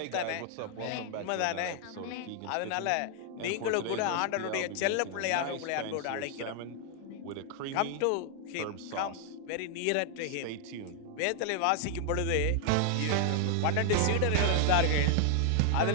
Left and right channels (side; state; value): both; different; correlation 0.00